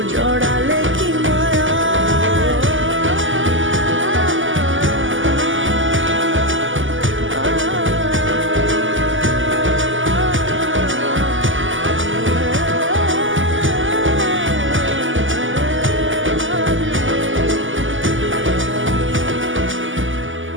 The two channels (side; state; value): left; late; 0.57 ms